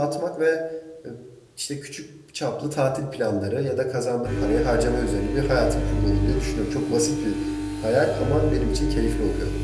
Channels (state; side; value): identical; both; correlation 1.00